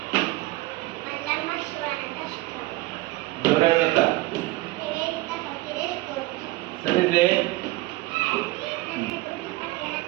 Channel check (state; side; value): quieter; left; 19.8 dB